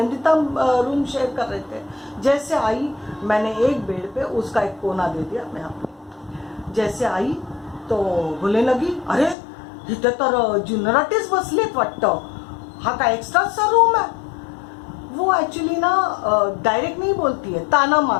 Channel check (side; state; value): right; drops out; at 9.3 s